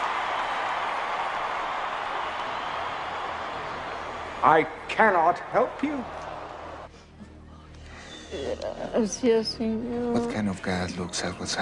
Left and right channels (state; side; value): identical; both; correlation 1.00